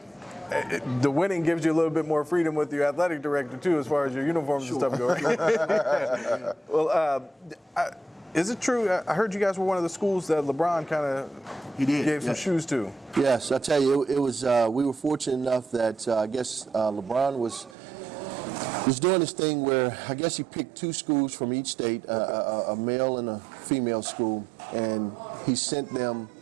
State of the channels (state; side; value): drops out; left; at 17.8 s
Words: The winning gives you a little bit more freedom with your athletic director, too, as far as your uniforms and stuff go. Well, is it true? I heard you guys were one of the schools that LeBron kind of gave some shoes to. Yes, I tell you, it was. We were fortunate enough that I guess LeBron was doing this thing where I guess he picked 2 schools from each state, a male and a female school, and he sent them